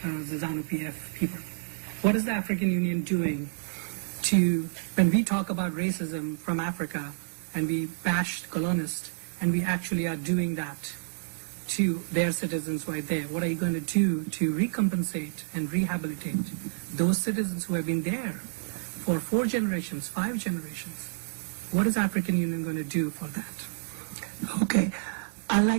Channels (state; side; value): silent; left; 58 dB below the other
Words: the ZANU-PF people. What is the African Union doing to, when we talk about racism from Africa and we bash colonialists, and we actually are doing that to their citizens right there, what are you going to do to recompensate and rehabilitate those citizens who have been there for 4 generations, 5 generations? What is African Union going to do for that? Okay, I